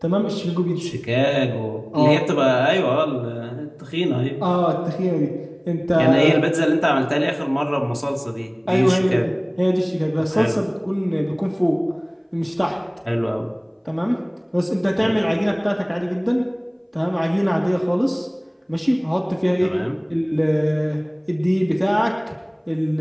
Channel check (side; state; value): both; identical; correlation 1.00